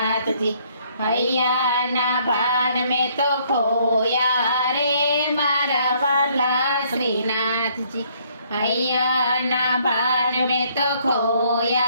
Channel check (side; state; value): both; inverted; correlation -0.65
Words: હૈયાના ભાન મેં તો ખોયા રે મારા વાલા શ્રીનાથજી. હૈયાના ભાન મેં તો